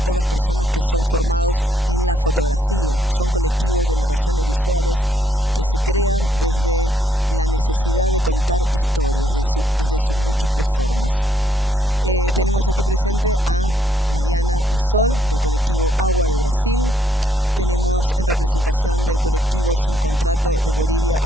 todas personas que son formados en la fotografía, son colectivos de narraciones visuales que se crean desde la necesidad de contar historias, desde sus múltiples formas. Tenemos aquí presente a Mariana y Sol, del colectivo Agua de Brasil. Tenemos en representación del colectivo Sin Contrato de Bolivia,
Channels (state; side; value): normal; both; correlation 0.72